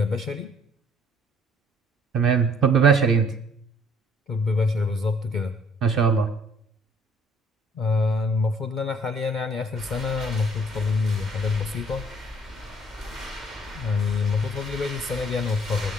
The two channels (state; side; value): normal; both; correlation 0.59